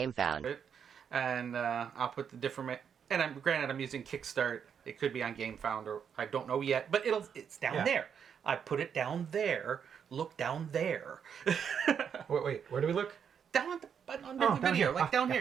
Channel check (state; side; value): quieter; left; 7.6 dB